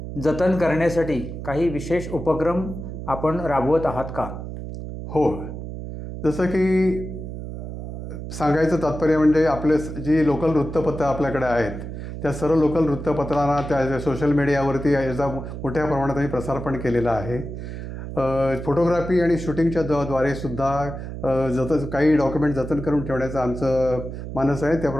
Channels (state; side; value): noise; right; hum, 8 dB below the sound